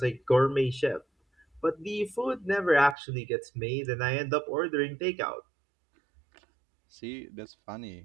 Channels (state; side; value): drops out; left; at 3.0 s